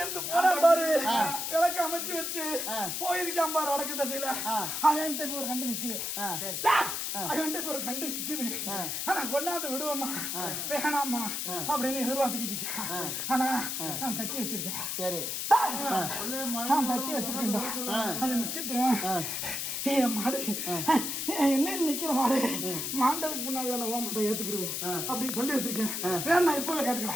இருந்து போனா பாரு. விளக்கு அமைச்சு வச்சு போயிருக்கான் பாரு வடக்கு திசையில. அவன்கிட்ட இப்ப ஒரு கண்டு நிக்குது. அவன்கிட்ட இப்ப ஒரு கண்டு நிக்குது. ஆனா கொண்டாந்து விடுவோமா வேணாமா அப்படின்னு எதிர்பார்த்துக்கிட்டு இருக்கேன். ஆனா நான் தட்டி வச்சிருக்கேன். சரி நான் தட்டி வச்சிருக்கேன்டா. அது நிக்கட்டும். என் மாடு என்ன நிக்கிற மாடு மாண்டதுக்கு முன்னாடி நான் ஓ மாட்டை ஏத்துக்கிருவேன் அப்படின்னு சொல்லி வச்சிருக்கேன். வேணா இப்பவே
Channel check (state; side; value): noise; left; hiss, 2 dB below the sound